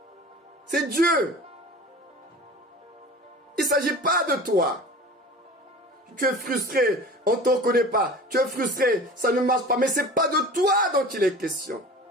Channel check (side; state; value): both; normal; correlation 0.39